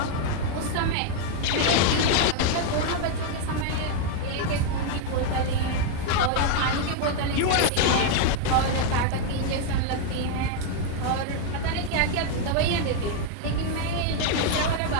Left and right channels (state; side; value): different; both; correlation 0.00